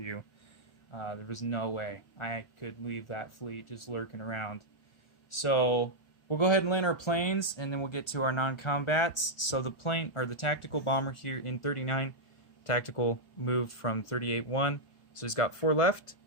you. There was no way I could leave that fleet just lurking around. So we'll go ahead and land our planes, and then we'll get to our non-combats. So the plane, or the tactical bomber here in 39, tactical moved from 38-1. So he's got 4 left.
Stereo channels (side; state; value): right; late; 1.4 ms